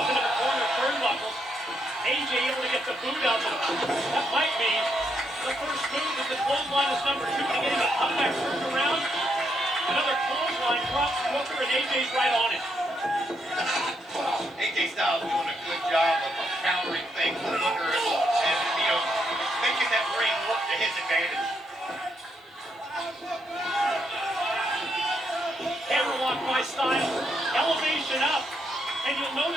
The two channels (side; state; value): both; normal; correlation 0.77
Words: into the corner turnbuckles. AJ able to get the boot out of him. That might be the first move as the clothesline is number 2 to get him a comeback turned around. Another clothesline drops Booker and AJ's right on it. AJ Styles doing a good job of countering things with Booker and making that ring work to his advantage. Hammerlock by Styles. Elevation up. And you'll